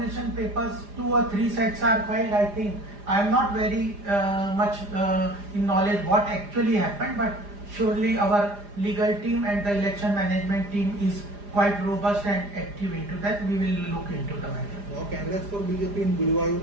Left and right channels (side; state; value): left; late; 4.9 ms